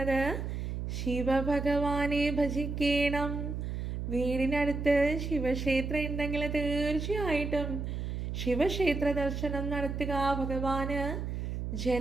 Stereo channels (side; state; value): right; noise; hum, 4 dB below the sound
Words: ശിവഭഗവാനെ ഭജിക്കണം. വീടിനടുത്ത് ശിവക്ഷേത്രം ഉണ്ടെങ്കിൽ തീർച്ചയായിട്ടും ശിവക്ഷേത്ര ദർശനം നടത്തുക. ഭഗവാന്